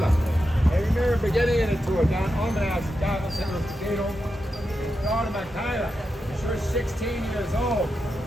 They remember beginning in the tour, Don Almanaz's daughter, St. Louis Cathedral. Daughter Michaela, she was 16 years old.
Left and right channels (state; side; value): normal; both; correlation 0.88